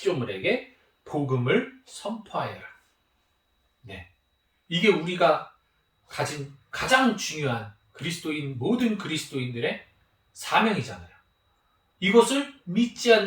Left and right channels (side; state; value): both; identical; correlation 1.00